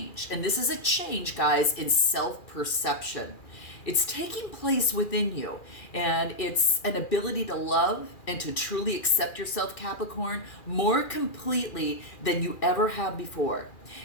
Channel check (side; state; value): right; late; 2.4 ms